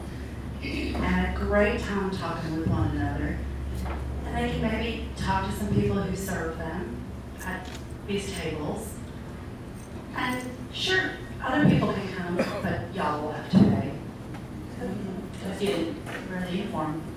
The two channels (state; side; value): identical; both; correlation 1.00